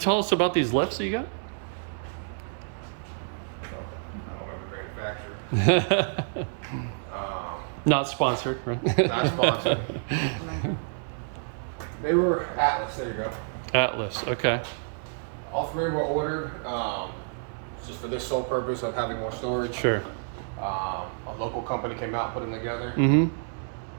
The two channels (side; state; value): left; silent; digital silence